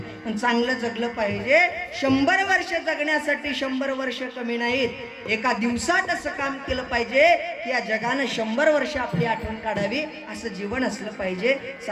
पण चांगलं जगलं पाहिजे. 100 वर्ष जगण्यासाठी 100 वर्ष कमी नाहीत. एका दिवसात असं काम केलं पाहिजे की या जगानं 100 वर्ष आपली आठवण काढावी. असं जीवन असलं पाहिजे,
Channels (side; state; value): both; identical; correlation 1.00